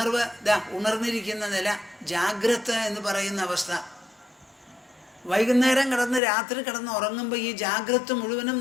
ഉണർന്നിരിക്കുന്ന നില, ജാഗ്രത എന്ന് പറയുന്ന അവസ്ഥ. വൈകുന്നേരം രാത്രി കിടന്ന് ഉറങ്ങുമ്പോൾ ഈ ജാഗ്രത മുഴുവനും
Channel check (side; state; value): right; drops out; at 6.2 s